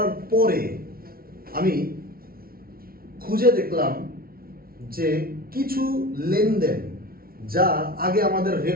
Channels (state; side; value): late; left; 0.43 ms